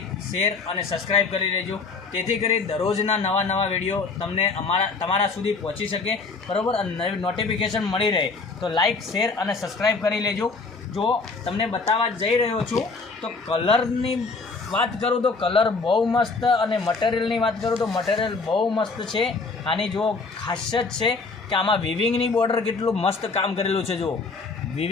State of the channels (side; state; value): right; quieter; 4.2 dB